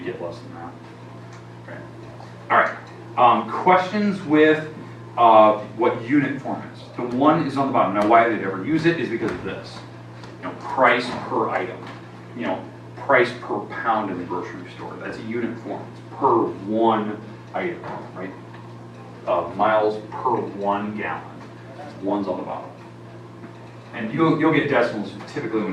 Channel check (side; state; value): both; identical; correlation 1.00